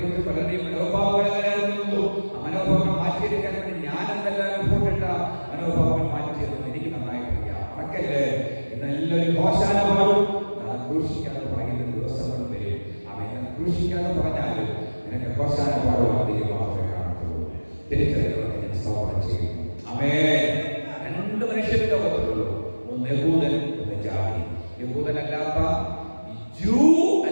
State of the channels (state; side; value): inverted; both; correlation -1.00